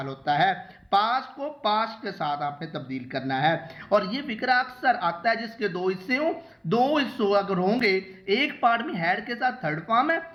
होता है। पास्ट को पास्ट के साथ आपने तब्दील करना है। और ये फिक्रा अक्सर आता है जिसके दो हिस्से हों, दो हिस्सों अगर होंगे, एक पार्ट में हैड के साथ थर्ड फॉर्म है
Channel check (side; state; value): both; identical; correlation 1.00